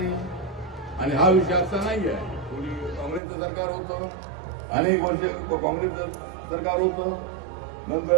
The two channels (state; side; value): drops out; left; at 3.2 s